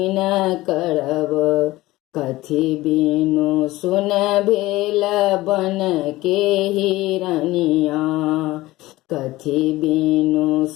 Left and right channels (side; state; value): right; quieter; 18.2 dB